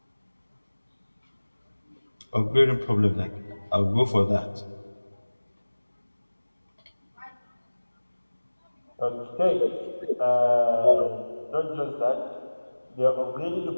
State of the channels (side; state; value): both; inverted; correlation -1.00